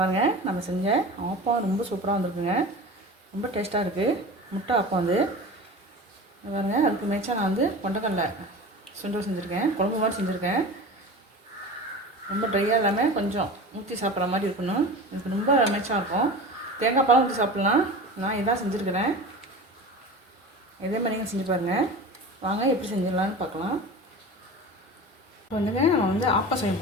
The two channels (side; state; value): both; normal; correlation 0.33